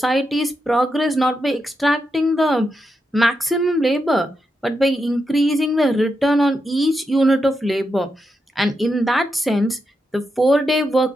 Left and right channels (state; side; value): normal; both; correlation 0.85